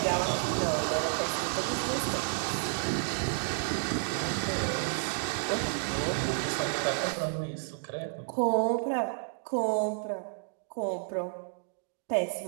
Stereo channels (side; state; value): left; silent; digital silence